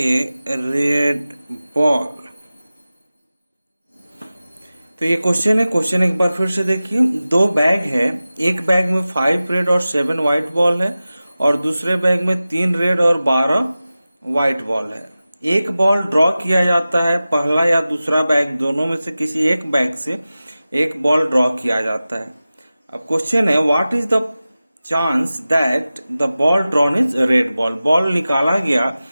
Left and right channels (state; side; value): inverted; both; correlation -0.96